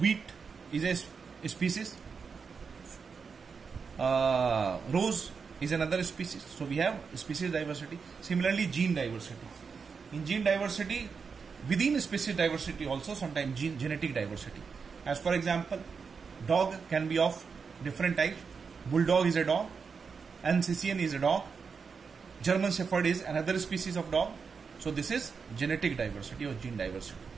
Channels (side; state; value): left; quieter; 5.5 dB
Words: is a species, rose is another species. So we have species diversity. Similarly, gene diversity. In gene diversity, within species diversity also sometimes genetic diversity. As for example, dog can be of different types. Bulldog is a dog, Alsatian is a dog, German Shepherd is another species of dog. So this is genetic diversity or gene diversity.